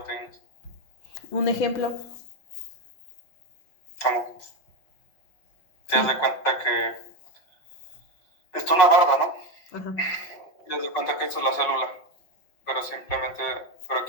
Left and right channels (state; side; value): late; right; 5.4 ms